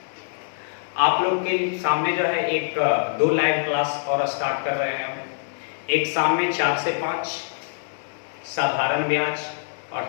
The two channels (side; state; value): right; silent; digital silence